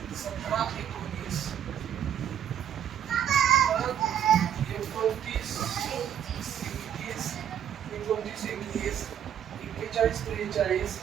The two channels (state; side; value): quieter; left; 9.5 dB